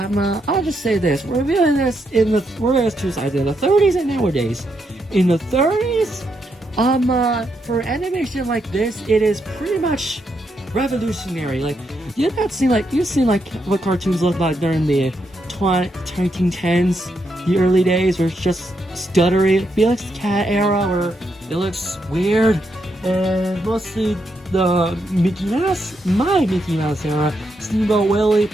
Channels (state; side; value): normal; both; correlation 0.80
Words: I'll just say this. We're viewing this we're doing two sides, in the 30s and nowadays. In the 30s, for animation like this, it is pretty much revolutionary. Like, you've seen what cartoons looked like during the 1910s, the early days, where it's just stuttery. Felix the Cat era, where it looks weird, and mostly the Mickey Mouse era, Steamboat Willie,